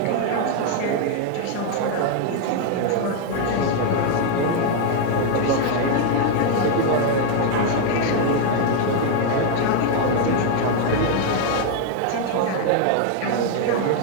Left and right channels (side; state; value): both; different; correlation 0.01